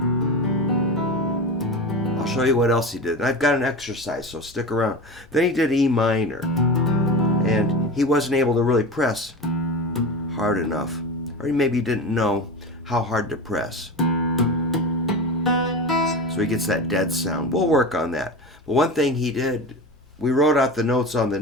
I'll show you what else he did. And I've got an exercise, so stick around. Then he did E minor, and he wasn't able to really press hard enough, or he maybe didn't know how hard to press. So he gets that dead sound. We'll work on that. But one thing he did, we wrote out the notes on the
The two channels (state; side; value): normal; both; correlation 0.27